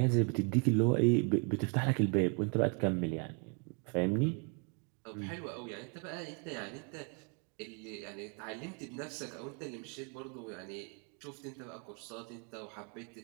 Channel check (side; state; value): left; quieter; 37.3 dB